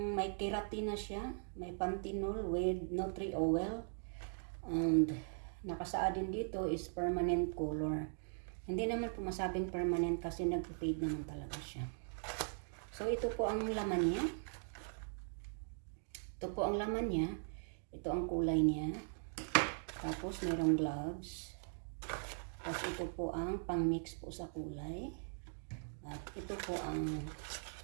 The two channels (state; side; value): silent; left; digital silence